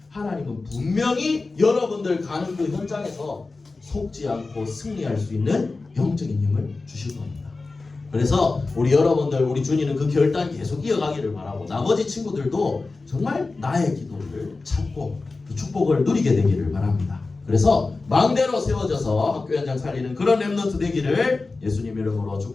하나님은 분명히 여러분들 가는 그 현장에서 속지 않고 승리할 수 있는 영적인 힘을 주실 겁니다. 그래서 우리 여러분들, 우리 준이는 그 결단 계속 이어가기를 바라고, 나머지 친구들도 정말 나의 기도를 찾고 그 축복을 누리게 되기를 바랍니다. 그래서 망대로 세워져서 학교 현장 살리는 그런 렘넌트 되기를 예수님 이름으로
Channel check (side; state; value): right; quieter; 3.7 dB